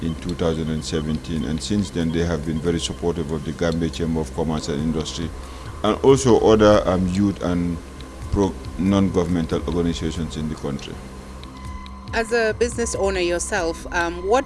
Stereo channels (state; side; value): identical; both; correlation 1.00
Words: in 2017, and since then they have been very supportive of the Gambia Chamber of Commerce and Industry, and also other youth and non-governmental organizations in the country. As a business owner yourself, what